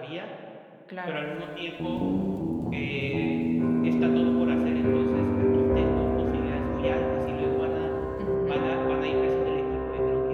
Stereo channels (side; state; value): both; identical; correlation 1.00